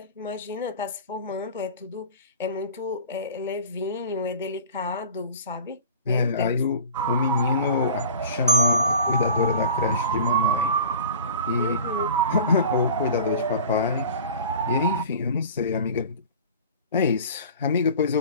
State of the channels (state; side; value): inverted; both; correlation -0.42